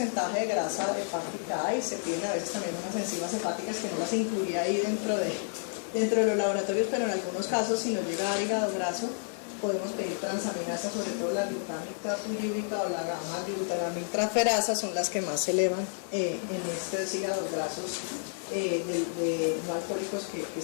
de grasa hepática hay, se piden a veces también unas enzimas hepáticas que no las incluía ahí dentro de los laboratorios, pero en algunos casos si nos llega a hígado graso podemos pedir transaminasa, sobre todo la glutámica puriúrica o la gamma-glutaramintraferasa son las que más se elevan en estos hígados grasos no alcohólicos que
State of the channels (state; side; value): silent; right; digital silence